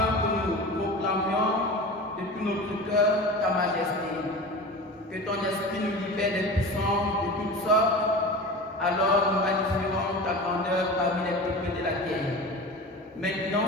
que nous proclamions de tout notre cœur ta majesté. Que ton esprit nous libère des puissances de toutes sortes, alors nous magnifierons ta grandeur parmi les peuples de la terre. Maintenant,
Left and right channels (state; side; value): normal; both; correlation 0.32